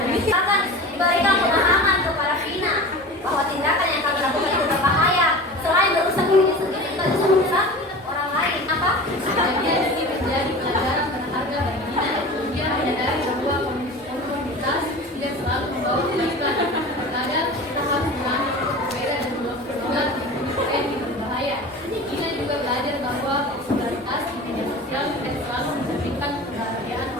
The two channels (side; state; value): both; normal; correlation 0.35